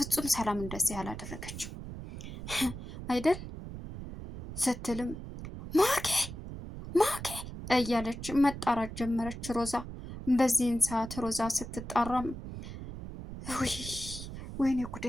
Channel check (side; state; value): right; noise; rumble, 10 dB below the sound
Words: ሰላም እንደዚህ ያላደረገችው አይደል ስትልም ማኪ እያለች መጣራት ጀመረች ሮዛ። በዚህን ሰዓት ሮዛ ስትጣራም ወይኔ ጉዴ